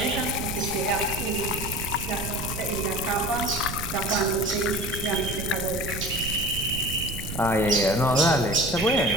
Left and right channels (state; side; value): noise; right; rumble, 7 dB below the sound